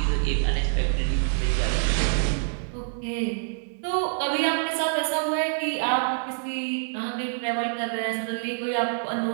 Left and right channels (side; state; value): left; silent; digital silence